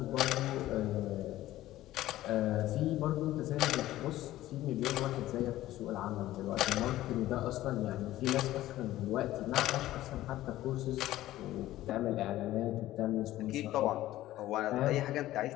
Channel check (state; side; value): quieter; right; 15.1 dB